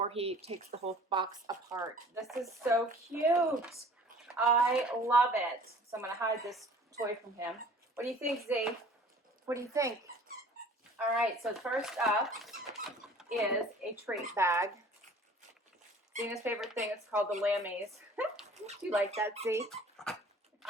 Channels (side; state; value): both; normal; correlation 0.49